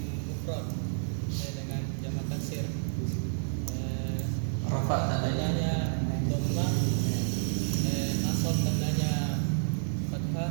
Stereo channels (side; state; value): left; silent; digital silence